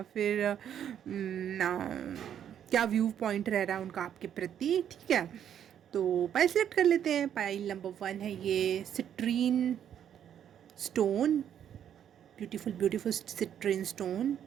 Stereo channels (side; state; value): left; quieter; 9.5 dB